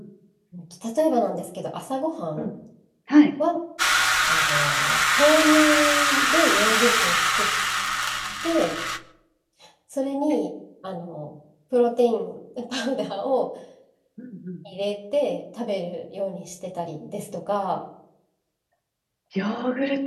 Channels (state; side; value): identical; both; correlation 1.00